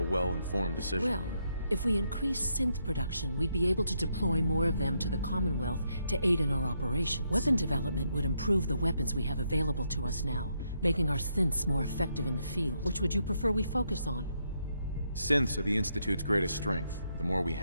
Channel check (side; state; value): both; inverted; correlation -0.78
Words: well-informed decision. Well, if we increase synth production, we'd be able to deploy more of them to the Commonwealth to aid in our operations. Weapon development would improve the weapons we have available to us now, making our synths more effective in the field. Which would you prefer we focus on? Synths are the Institute's greatest strength. The more we